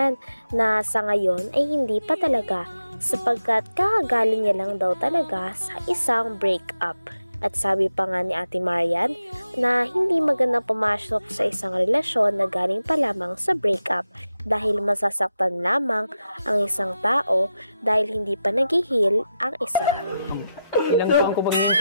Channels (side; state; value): both; inverted; correlation -0.89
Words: na sa ngayon ay hindi pa talaga sapagkat kakagaling niya lang daw talaga sa isang breakup. At sabi pa nga ni Ate Marian na hindi magandang pumasok sa isang relasyon na galing pa lamang sa breakup dahil masasaktan lamang ang isang tao dahil hindi pa nag-heal ang isa. Ilang taon ko pag